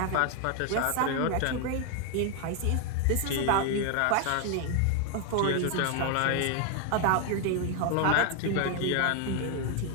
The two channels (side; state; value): both; different; correlation 0.01